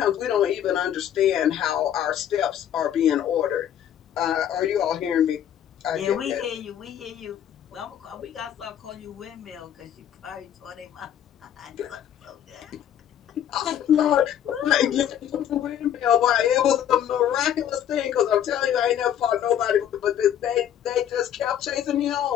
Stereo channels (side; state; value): right; quieter; 10.2 dB